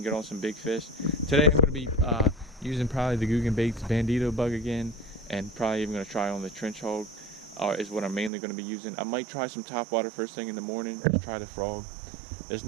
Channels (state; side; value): drops out; left; at 8.3 s